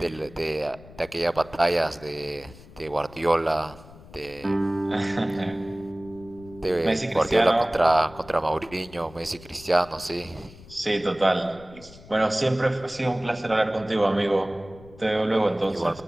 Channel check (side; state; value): left; noise; rumble, 20 dB below the sound